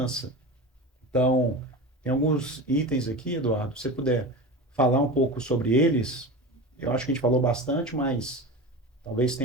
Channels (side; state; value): both; normal; correlation 0.28